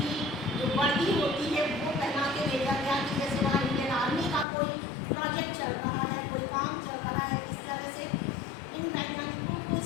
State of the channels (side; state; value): right; drops out; at 4.5 s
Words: जो वर्दी होती है वो पहना के भेजा गया कि जैसे वहाँ इंडियन आर्मी का कोई प्रोजेक्ट चल रहा है, कोई काम चल रहा है। इस तरह से इन वैज्ञानिकों को